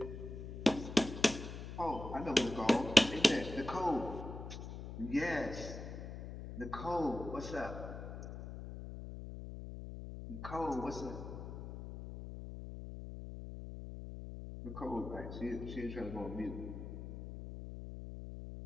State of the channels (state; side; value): noise; left; hum, 9 dB below the sound